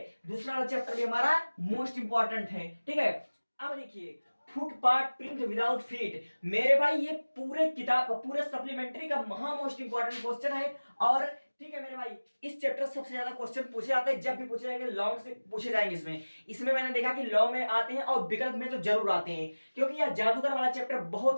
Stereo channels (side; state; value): both; inverted; correlation -1.00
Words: दूसरा वाला चैप्टर भी हमारा मोस्ट इंपॉर्टेंट है। ठीक है, अब देखिए फुटपाथ प्रिंट विदाउट फीट, मेरे भाई ये पूरे किताब का, पूरे सप्लीमेंट्री का महा मोस्ट इंपॉर्टेंट क्वेश्चन है। और ठीक है मेरे भाई, इस चैप्टर से सबसे ज्यादा क्वेश्चन पूछे जाते हैं, जब भी पूछे जाएंगे लॉ से पूछे जाएंगे। इसमें मैंने देखा कि लॉ में आते हैं और विकल्प में तो जरूर आते हैं, क्योंकि यह जादूगर वाला चैप्टर